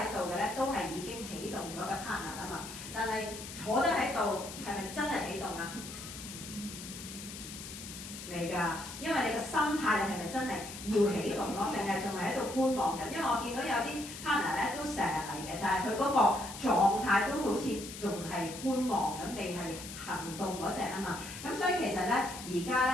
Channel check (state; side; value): noise; left; hiss, 11 dB below the sound